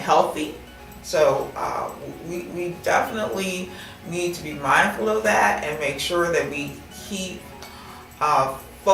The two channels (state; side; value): identical; both; correlation 1.00